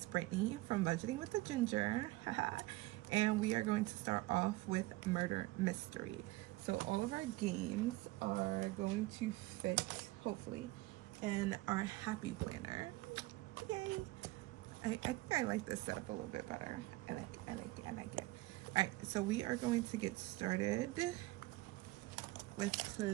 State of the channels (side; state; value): left; quieter; 19.5 dB